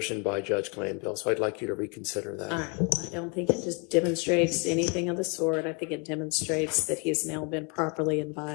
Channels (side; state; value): right; quieter; 34.0 dB